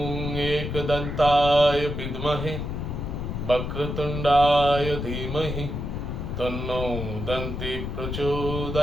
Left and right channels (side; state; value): left; noise; rumble, 4 dB below the sound